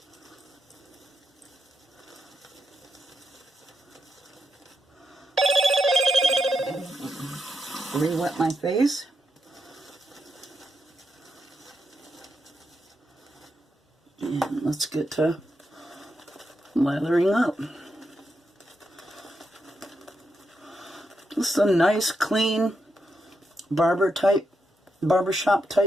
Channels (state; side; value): normal; both; correlation 0.84